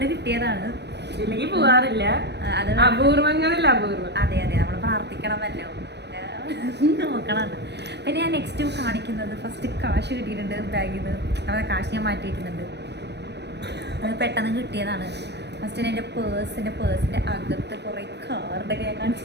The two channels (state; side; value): late; left; 0.50 ms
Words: കിട്ടിയതാണ്. ഇല്ലെങ്കിൽ പോവാറില്ല. അത് അപൂർവങ്ങളിൽ അപൂർവം. അതെ അതെ, നമ്മൾ പ്രാർത്ഥിക്കണമല്ലോ, നോക്കണം. പിന്നെ ഞാൻ നെക്സ്റ്റ് കാണിക്കുന്നത് ഫസ്റ്റ് കാശ് കിട്ടിയിട്ടുണ്ട് ബാഗിൽ നിന്ന്. അവിടെ കാശ് ഞാൻ മാറ്റിയിരിക്കുന്നുണ്ട്. അത് പെട്ടെന്ന് കിട്ടിയതാണ്. ഫസ്റ്റ് എൻ്റെ പേഴ്സിൻ്റെ അകത്ത് കുറേ കാർഡൊക്കെ ഞാൻ കാണിച്ചു.